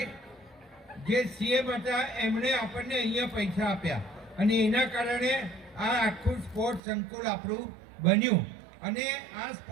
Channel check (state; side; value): drops out; left; at 6.8 s